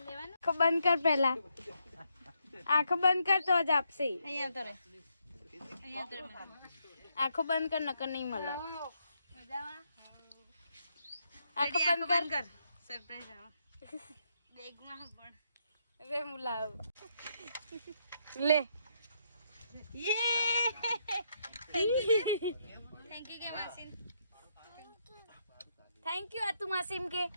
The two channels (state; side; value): inverted; both; correlation -0.77